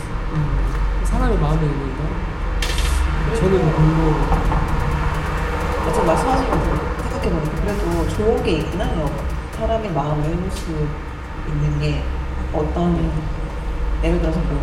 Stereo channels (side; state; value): both; identical; correlation 1.00